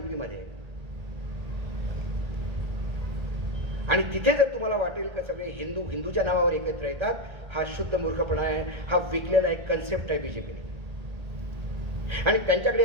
मध्ये। आणि तिथे जर तुम्हाला वाटेल का सगळे हिंदू हिंदूच्या नावावर एकत्र येतात, हा शुद्ध मूर्खपणा आहे, हा विकलेला एक कन्सेप्ट आहे बीजेपीने. आणि त्यांच्याकडे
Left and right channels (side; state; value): left; late; 1.8 ms